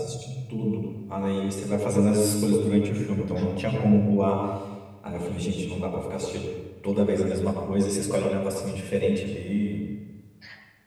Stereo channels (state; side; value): identical; both; correlation 1.00